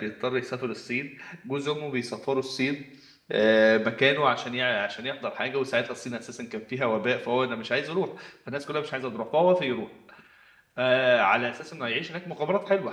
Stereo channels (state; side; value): identical; both; correlation 1.00